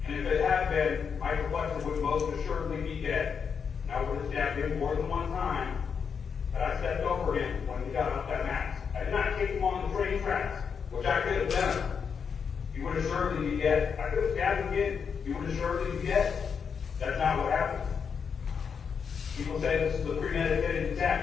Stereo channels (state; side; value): quieter; right; 6.5 dB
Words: And if it had been, Micah Fletcher would most assuredly be dead. And I would have stabbed him more than one time, but I stepped over him when he got off that mask. I did not kick him on the train tracks, which I could have done. He would assuredly be dead. I could have stabbed him again. He would assuredly be dead. That's not what happened. People say this is a premeditated